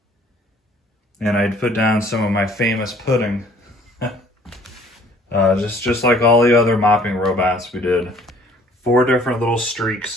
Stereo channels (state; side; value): normal; both; correlation 0.56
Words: And I'd put down some of my famous pudding. just like all the other mopping robots we did. 4 different little